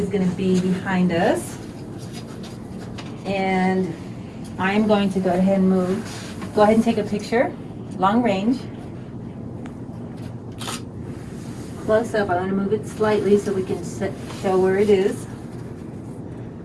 going to be behind us. And I'm going to go ahead and take a picture, long range. Close up, I want to move it slightly so we can show where it is.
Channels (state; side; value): identical; both; correlation 1.00